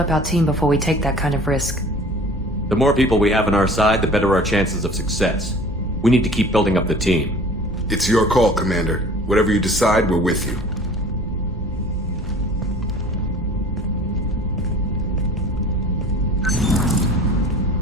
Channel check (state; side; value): normal; both; correlation 0.45